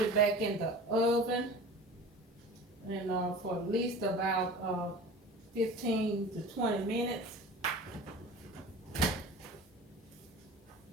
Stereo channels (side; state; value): both; normal; correlation 0.38